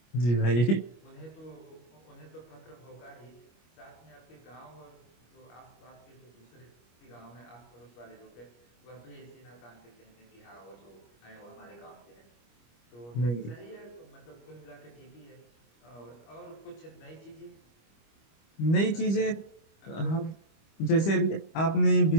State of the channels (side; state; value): right; late; 25 ms